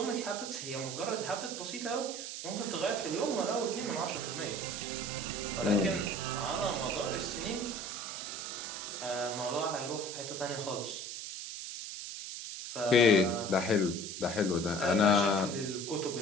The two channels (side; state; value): right; noise; hiss, 7 dB below the sound